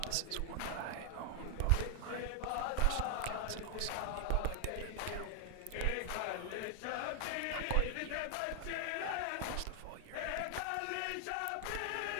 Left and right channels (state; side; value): different; both; correlation 0.00